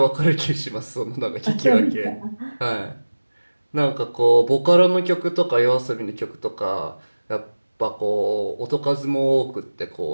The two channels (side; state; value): both; inverted; correlation -1.00